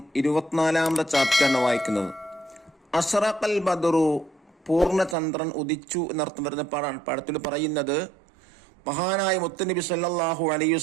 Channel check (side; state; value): left; drops out; at 5.2 s